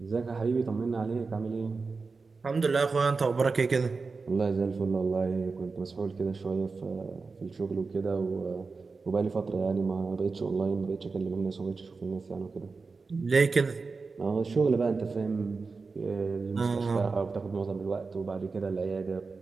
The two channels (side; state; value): left; quieter; 4.3 dB